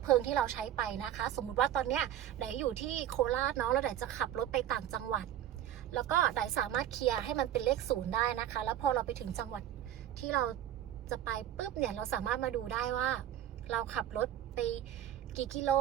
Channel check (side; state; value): left; quieter; 11.4 dB